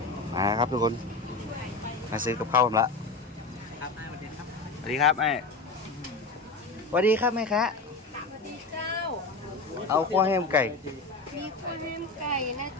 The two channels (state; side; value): quieter; right; 3.5 dB